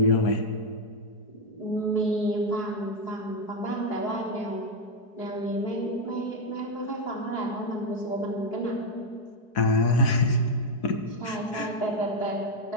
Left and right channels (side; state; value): right; late; 4.7 ms